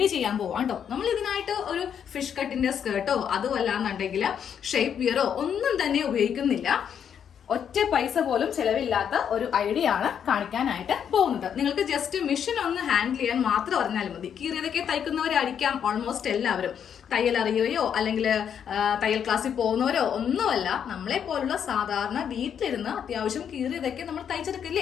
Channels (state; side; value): quieter; right; 8.3 dB